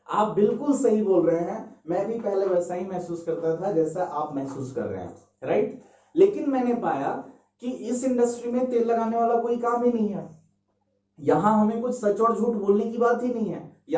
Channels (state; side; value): identical; both; correlation 1.00